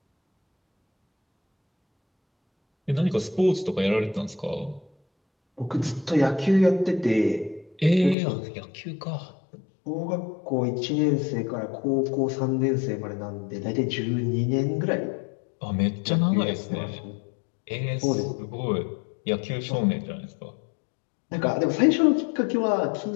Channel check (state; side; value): drops out; right; at 8.2 s